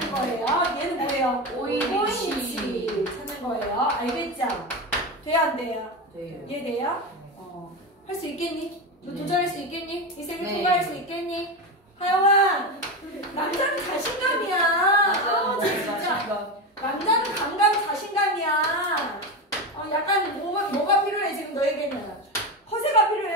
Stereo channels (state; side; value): normal; both; correlation 0.18